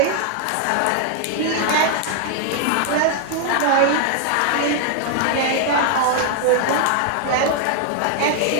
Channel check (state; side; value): different; both; correlation 0.00